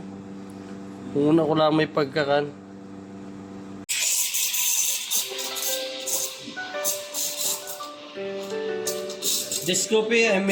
Una ko lang may pagkakan. This coffee I'm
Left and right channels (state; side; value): identical; both; correlation 1.00